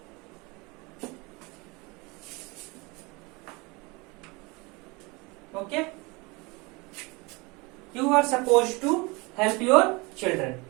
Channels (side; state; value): left; quieter; 26.1 dB